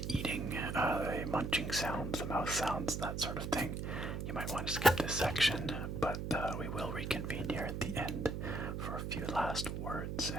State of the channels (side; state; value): right; noise; hum, 3 dB below the sound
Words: eating, the munching sounds, the mouth sounds, that sort of thing, you might want to skip this section, but we will reconvene here at the end for a few last words,